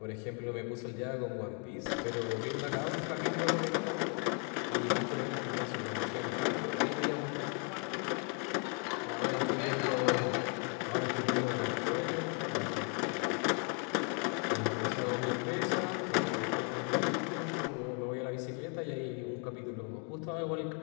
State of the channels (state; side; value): quieter; right; 39.7 dB